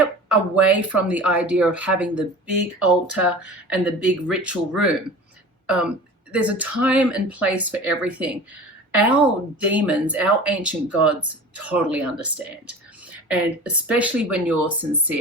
away from the idea of having the big altar and the big ritual room. There's a time and place for everything. Our demons, our ancient gods, totally understand. And especially when you're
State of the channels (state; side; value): normal; both; correlation 0.38